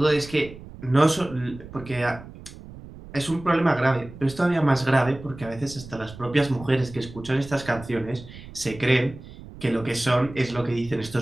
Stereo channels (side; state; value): right; noise; rumble, 16 dB below the sound